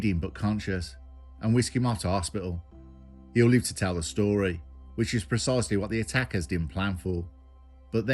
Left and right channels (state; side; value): identical; both; correlation 1.00